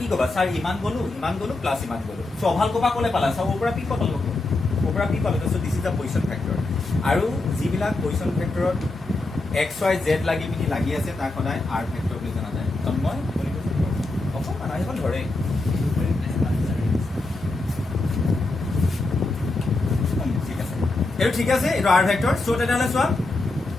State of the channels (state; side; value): quieter; right; 3.0 dB